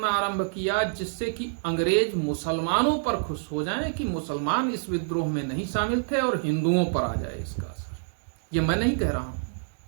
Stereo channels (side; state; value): left; silent; digital silence